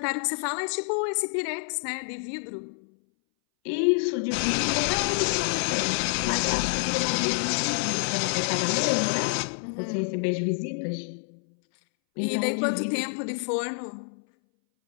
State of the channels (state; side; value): silent; right; 60 dB below the other